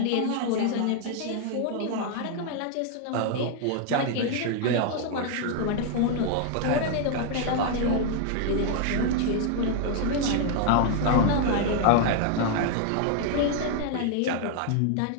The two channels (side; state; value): both; different; correlation 0.00